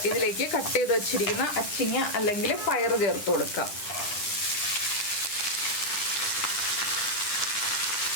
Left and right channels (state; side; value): late; right; 10 ms